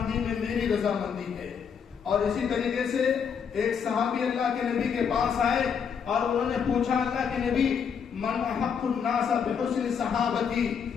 میں میری رضامندی ہے. اور اسی طریقے سے ایک صحابی اللہ کے نبی کے پاس آئے اور انہوں نے پوچھا اللہ کے نبی من احق الناس بحسن صحابتی,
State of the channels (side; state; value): right; quieter; 7.0 dB